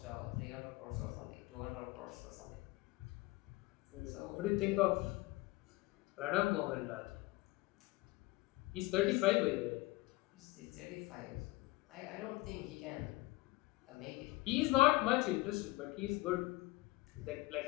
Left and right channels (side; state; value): right; quieter; 20.8 dB